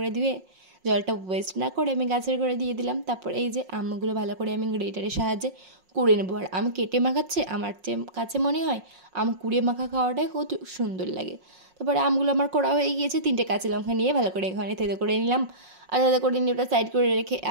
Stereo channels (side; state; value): left; late; 5.5 ms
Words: ধুয়ে জলটা ওয়েস্ট না করে আমি গাছের করে দিয়ে দিলাম। তারপর এই যে আমগুলো ভালো করে আমি গ্রেটারের সাহায্যে কুড়ে নেবো। আর আম কেটে মাখাচ্ছে আমার কাছে মনে হয় আম কুড়িয়ে মাখা খাওয়াটাই কত সুন্দর লাগে। তারপরে আমগুলো আমার করা হয়ে গিয়েছে। 3টে কাঁচা লঙ্কা নিয়ে ভালো করে এখানে থেতো করে নিলাম। আর থেতো করে নিয়ে ওটা সাইড করে রেখে